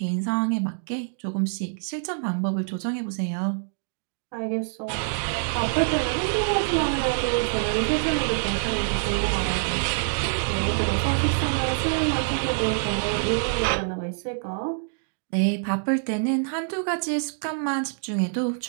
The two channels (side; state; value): left; silent; digital silence